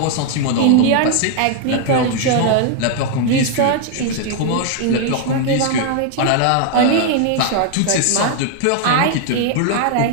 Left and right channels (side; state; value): both; different; correlation 0.00